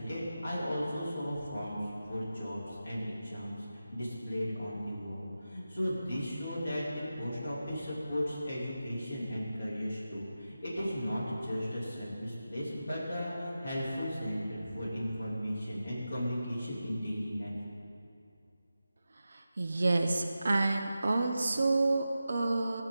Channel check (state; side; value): inverted; both; correlation -0.92